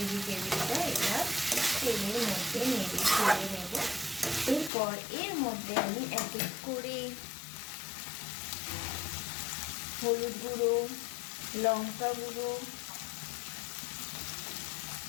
এবার তেলের মধ্যে নেড়ে ছেড়ে নেব। এরপর এর মধ্যে আমি এক এক করে হলুদ গুঁড়ো, লঙ্কা গুঁড়ো,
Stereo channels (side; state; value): right; drops out; at 4.7 s